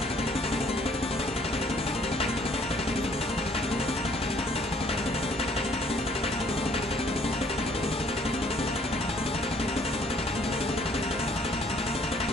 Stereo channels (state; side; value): normal; both; correlation 0.61